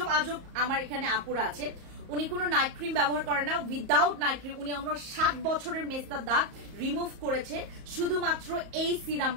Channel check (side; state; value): left; late; 34 ms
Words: আমার এখানে আপুরা আছে, উনি কোনো নাইট ক্রিম ব্যবহার করে না, উইদাউট নাইট ক্রিম উনি আমার 7 বছরের মেস্তার দাগ রিমুভ করেছে শুধুমাত্র এই